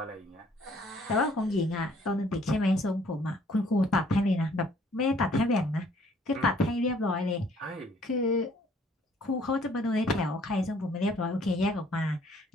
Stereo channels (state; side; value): normal; both; correlation 0.60